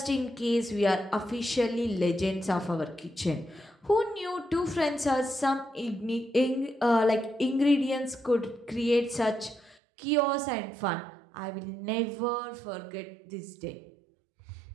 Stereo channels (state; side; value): drops out; left; at 9.8 s